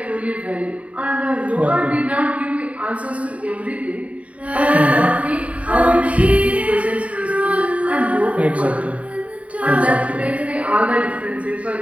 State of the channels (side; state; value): left; late; 0.066 ms